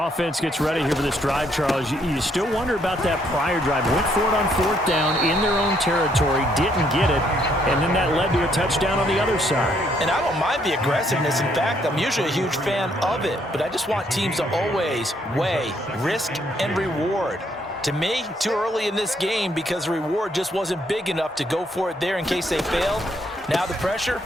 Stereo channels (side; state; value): both; normal; correlation 0.70